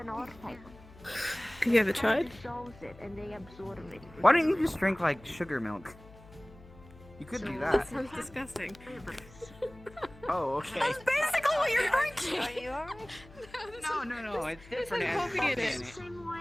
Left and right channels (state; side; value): noise; left; hum, 21 dB below the sound